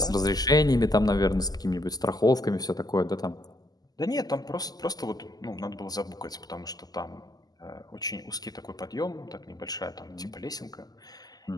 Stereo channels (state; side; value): late; right; 0.19 ms